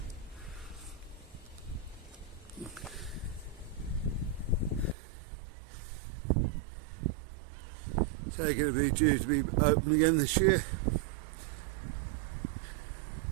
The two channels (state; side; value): drops out; left; at 5.0 s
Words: So going to be due to be open again this year.